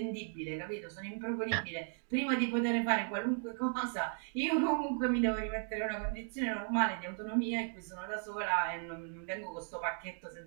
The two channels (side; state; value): left; silent; 54 dB below the other